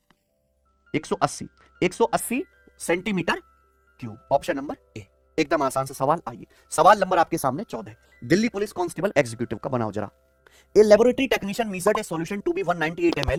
180 centimetre cube. Option number A, एकदम आसान से सवाल। आइए सवाल नंबर आपके सामने 14, दिल्ली पुलिस कांस्टेबल एग्जीक्यूटिव का बनाओ जरा। A laboratory technician measured a solution to be 198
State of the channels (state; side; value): identical; both; correlation 1.00